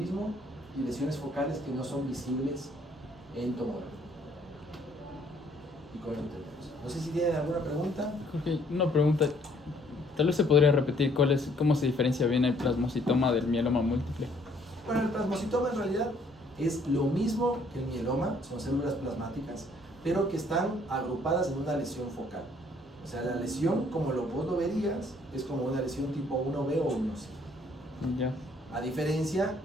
y lesiones focales que no son visibles en tomografía. Y con eso terminamos. No sé si tienen alguna pregunta. Jorge, una pregunta. Tal vez se podría repetir cómo se diferencia bien el plasmocitoma del mieloma múltiple. Bueno, el plasmocitoma en realidad es lo mismo que el mieloma, son células plasmáticas, pero que están agrupadas en una lesión focal. O sea, la lesión, como vos lo verías, es como una lesión tipo 1B o 1C. Ya. A diferencia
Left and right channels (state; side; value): normal; both; correlation 0.63